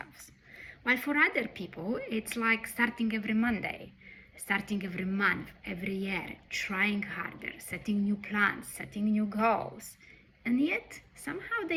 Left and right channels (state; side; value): identical; both; correlation 1.00